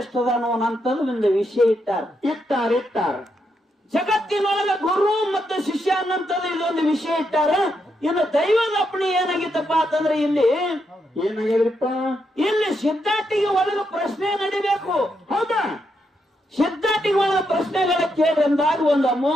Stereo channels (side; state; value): both; normal; correlation 0.81